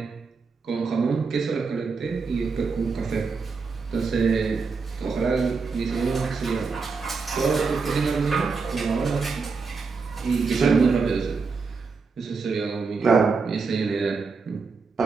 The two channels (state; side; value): quieter; left; 4.8 dB